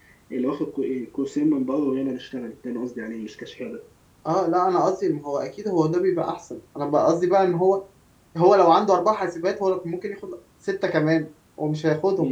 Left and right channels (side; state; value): both; identical; correlation 1.00